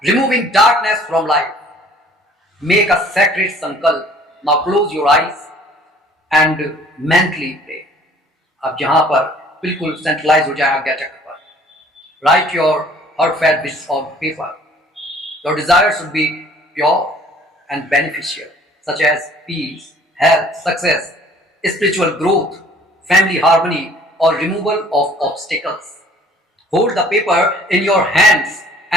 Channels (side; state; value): both; normal; correlation 0.54